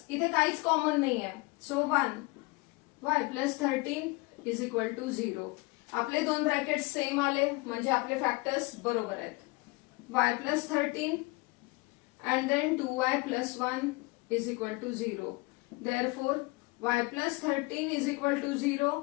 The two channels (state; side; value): quieter; right; 24.5 dB